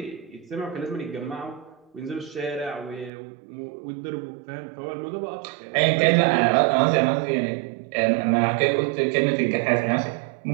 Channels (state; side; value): drops out; left; at 3.1 s